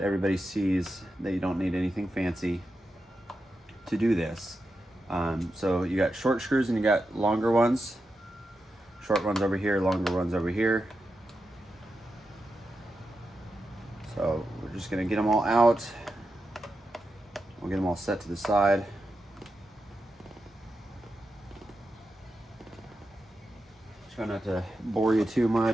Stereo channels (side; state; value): both; normal; correlation 0.88